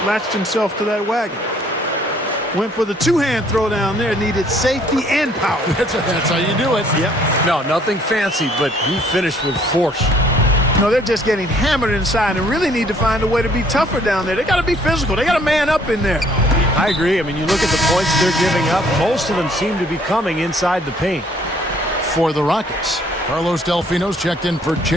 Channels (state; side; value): normal; both; correlation 0.61